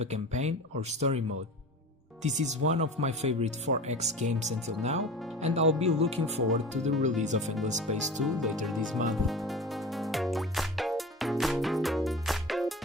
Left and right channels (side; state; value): both; normal; correlation 0.34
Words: a campaign or story mode. This is one of my favorite 4X games until now, and I'll be looking forward to the release of Endless Space 2 later this month.